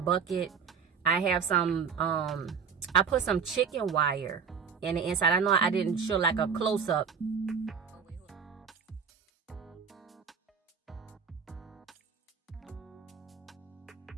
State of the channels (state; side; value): quieter; left; 6.3 dB